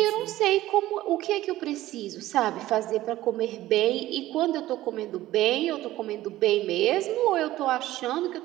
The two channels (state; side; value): quieter; left; 15.5 dB